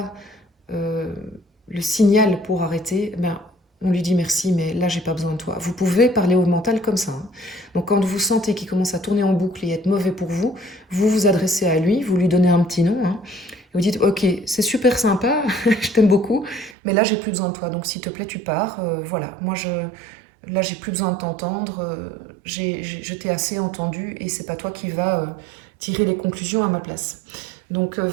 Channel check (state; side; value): drops out; left; at 16.8 s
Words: euh, le signal pour arrêter, ben, on lui dit merci, mais là j'ai pas besoin de toi. Vous pouvez parler au mental comme ça, hein. Donc quand vous sentez qu'il commence à tourner en boucle et être mauvais pour vous, vous vous adressez à lui, vous lui donnez un petit nom, hein, et vous dites ok, c'est super sympa, je t'aime beaucoup, mais là j'ai plus besoin de toi, donc s'il te plaît tu pars, voilà, là j'ai plus besoin de t'entendre, je t'ai assez entendu et c'est pas toi qui va tirer les conclusions à ma place. Donc